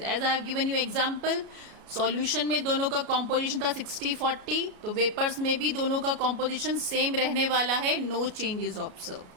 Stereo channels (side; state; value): left; late; 33 ms